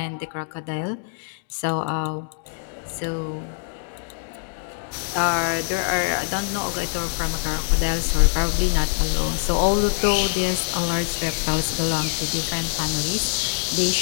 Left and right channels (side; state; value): right; silent; digital silence